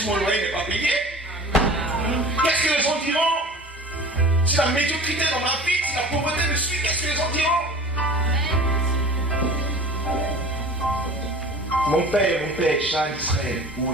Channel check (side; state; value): both; normal; correlation 0.40